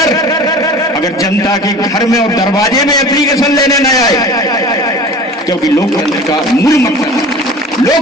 अगर जनता के घर में और दरवाजे में एप्लीकेशन लेने न आए, क्योंकि लोकतंत्र का मूल मकसद,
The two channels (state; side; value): normal; both; correlation 0.40